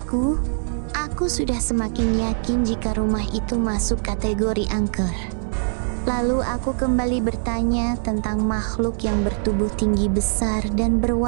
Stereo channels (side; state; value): left; silent; digital silence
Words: aku sudah semakin yakin jika rumah itu masuk kategori angker. Lalu aku kembali bertanya tentang makhluk yang bertubuh tinggi besar dan